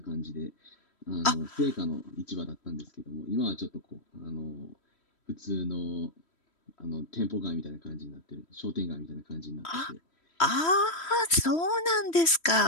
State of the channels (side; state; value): right; late; 3.1 ms